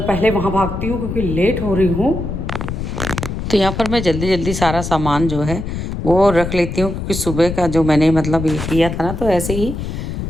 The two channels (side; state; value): left; noise; rumble, 5 dB below the sound